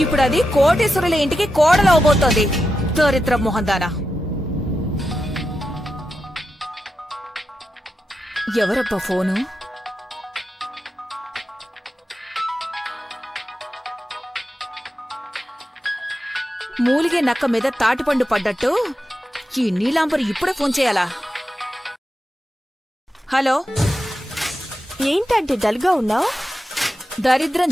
ఇప్పుడు అది కోటేశ్వరుల ఇంటికి కోడలవబోతోంది. దరిద్ర మొహందానా. ఎవరబ్బా ఫోను? మూలిగే నక్క మీద తాటిపండు పడ్డట్టు ఈ నీలాంబరి ఇప్పుడే ఫోన్ చేయాలా? హలో, ఏంటంటే డల్గా ఉన్నావు? దరిద్రం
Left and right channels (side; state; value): both; normal; correlation 0.89